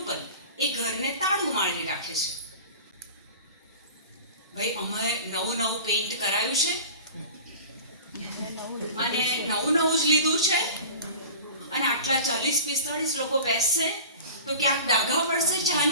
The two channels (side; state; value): both; inverted; correlation -0.37